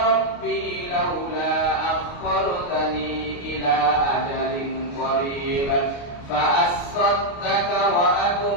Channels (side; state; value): right; late; 29 ms